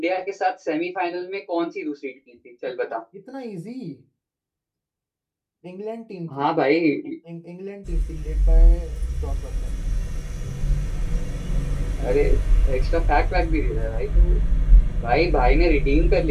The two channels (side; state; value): both; identical; correlation 1.00